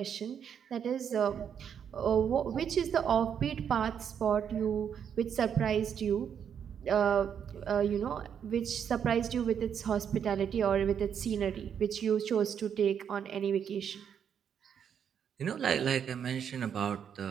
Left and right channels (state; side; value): quieter; left; 8.1 dB